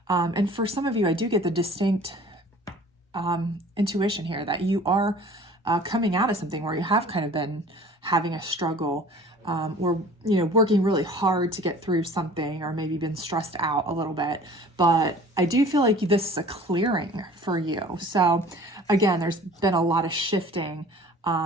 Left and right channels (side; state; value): both; normal; correlation 0.47